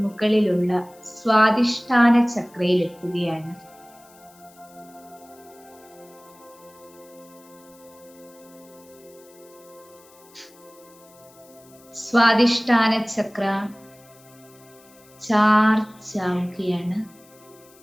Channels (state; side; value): noise; left; hiss, 26 dB below the sound